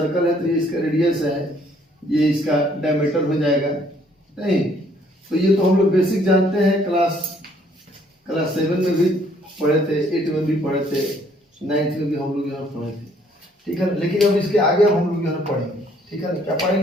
है तो ये इसका रेडियस है, ये इसका डायमीटर हो जाएगा नहीं। तो ये तो हम लोग बेसिक जानते हैं, क्लास 7 में भी पढ़े थे, 8 में भी पढ़े थे, 9th में भी हम लोग यहाँ पढ़े थे, ठीक है ना। लेकिन अब इसके आगे हम लोग यहाँ पढ़ेंगे, ठीक है ना। क्या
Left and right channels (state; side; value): normal; both; correlation 0.64